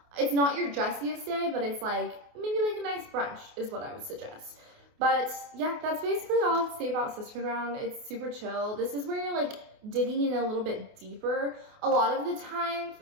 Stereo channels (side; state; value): left; late; 28 ms